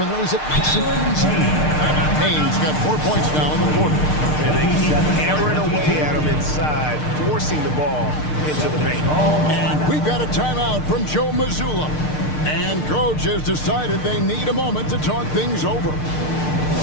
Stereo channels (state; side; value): late; right; 6.6 ms